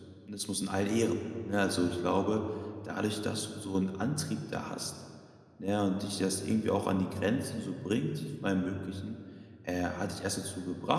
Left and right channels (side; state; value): both; identical; correlation 1.00